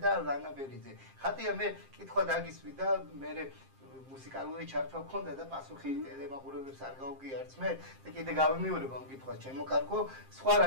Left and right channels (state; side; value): late; left; 7.6 ms